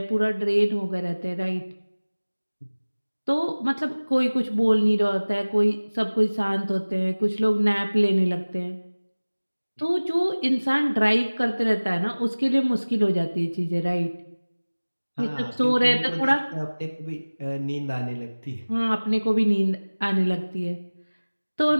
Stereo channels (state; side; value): inverted; both; correlation -1.00